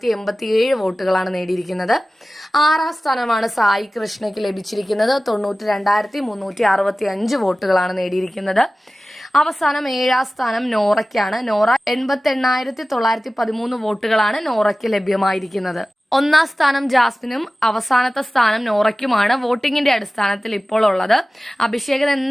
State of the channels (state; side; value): normal; both; correlation 0.96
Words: വോട്ടുകളാണ് നേടിയിരിക്കുന്നത്. ആറാം സ്ഥാനമാണ് സായി കൃഷ്ണയ്ക്ക് ലഭിച്ചിരിക്കുന്നത്. 92,365 വോട്ടുകളാണ് നേടിയിരിക്കുന്നത്. അവസാനം ഏഴാം സ്ഥാനം നോറയ്ക്കാണ്. നോറ 88,913 വോട്ടുകളാണ് നോറയ്ക്ക് ലഭ്യമായിരിക്കുന്നത്. ഒന്നാം സ്ഥാനം ജാസ്മിനും അവസാനത്തെ സ്ഥാനം നോറയ്ക്കുമാണ് വോട്ടിങ്ങിന്റെ അടിസ്ഥാനത്തിൽ ഇപ്പോൾ ഉള്ളത്. അഭിഷേകൻ